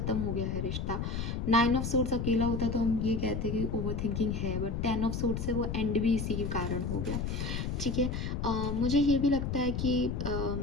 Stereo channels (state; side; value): noise; left; rumble, 2 dB below the sound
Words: हो गया है रिश्ता। 9 ऑफ सोर्ड्स अकेला होता तो हम ये कहते कि ओवर थिंकिंग है, बट 10 ऑफ सोर्ड्स से वो एंड भी इसी के कारण हो गया, ठीक है। मुझे ये भी लगता है कि